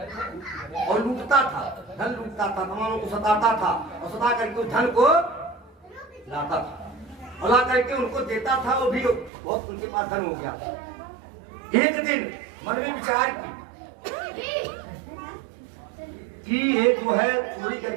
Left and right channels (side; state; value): left; drops out; at 9.3 s